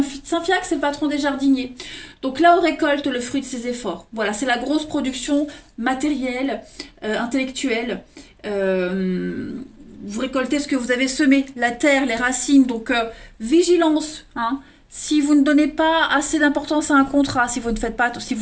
c'est le patron des jardiniers. Donc là, on récolte le fruit de ses efforts. Voilà, c'est la grosse production matérielle, intellectuelle. Vous récoltez ce que vous avez semé, la terre, les racines. Donc, vigilance. Hein. Si vous ne donnez pas assez d'importance à un contrat, si vous ne faites pas, si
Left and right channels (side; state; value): both; identical; correlation 1.00